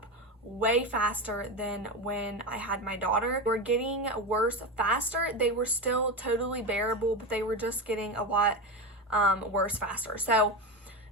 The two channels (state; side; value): normal; both; correlation 0.18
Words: way faster than when I had my daughter. They were getting worse faster. They were still totally bearable, but they were just getting a lot worse faster. So